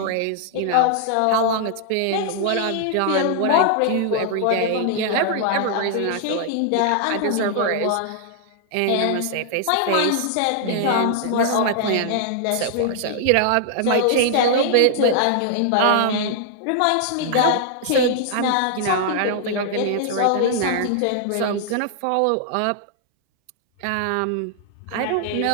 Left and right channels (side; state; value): both; different; correlation -0.01